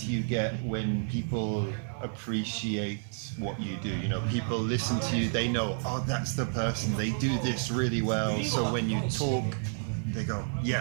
you get when people appreciate what you do, you know, people listen to you, they know, oh, that's the person, they do this really well. So when you talk, they go,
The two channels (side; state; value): left; silent; digital silence